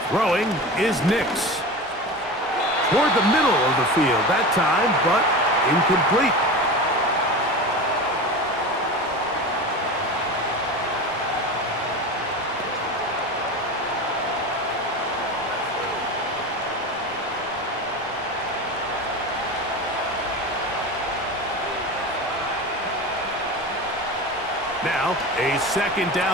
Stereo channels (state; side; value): normal; both; correlation 0.28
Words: Throwing is Nix. Toward the middle of the field that time, but incomplete. Now, a 2nd